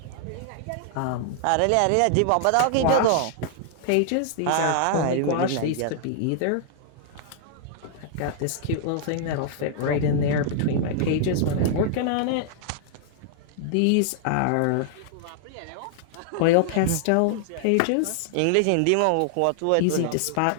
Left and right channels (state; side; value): different; both; correlation -0.01